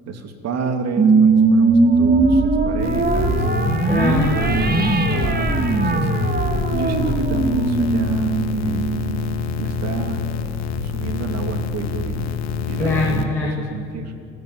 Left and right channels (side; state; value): both; normal; correlation 0.49